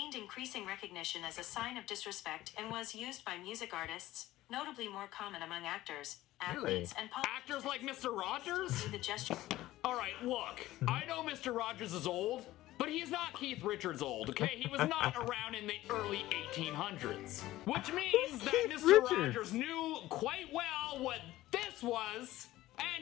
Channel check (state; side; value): quieter; right; 16.0 dB